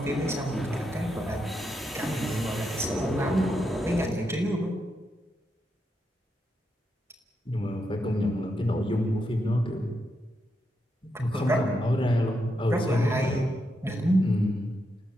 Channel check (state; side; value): normal; both; correlation 0.83